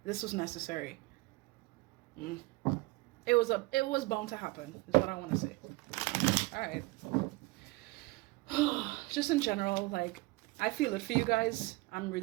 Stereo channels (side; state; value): left; quieter; 22.4 dB